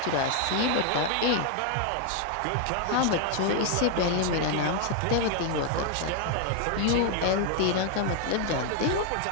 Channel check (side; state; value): both; different; correlation 0.00